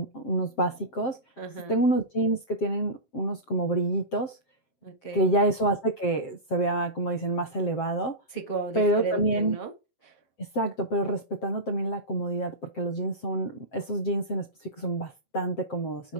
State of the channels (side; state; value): right; late; 7.6 ms